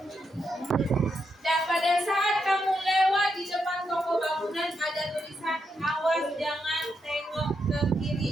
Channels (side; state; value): both; normal; correlation 0.82